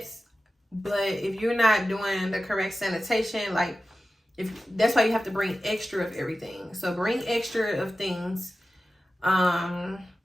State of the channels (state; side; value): normal; both; correlation 0.94